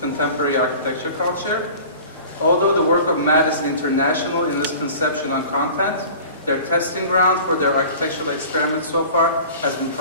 architecture culture. Although the work of MAD is international in its conception on content, their testing ground for their architectural experiments so far has been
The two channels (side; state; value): both; inverted; correlation -0.42